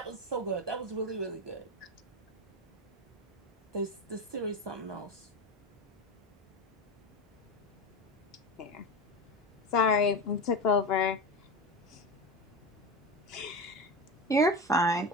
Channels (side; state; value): both; normal; correlation 0.22